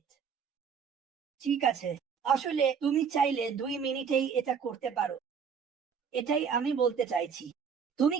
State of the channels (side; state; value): left; quieter; 6.7 dB